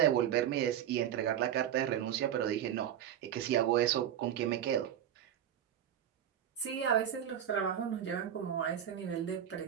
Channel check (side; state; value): left; quieter; 10.2 dB